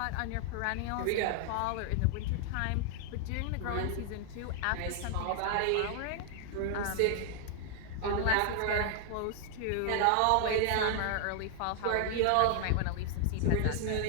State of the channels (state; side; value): different; both; correlation 0.00